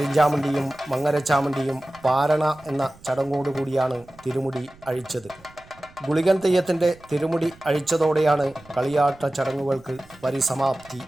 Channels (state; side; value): noise; right; rumble, 25 dB below the sound